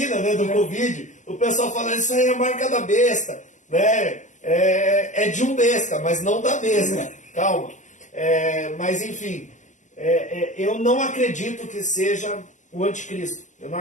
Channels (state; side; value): late; right; 0.36 ms